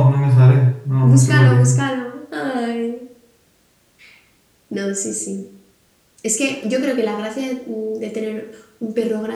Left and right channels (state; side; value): identical; both; correlation 1.00